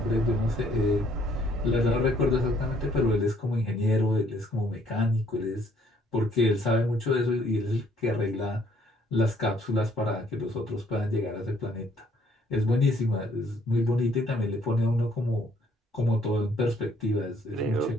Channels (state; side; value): normal; both; correlation 0.64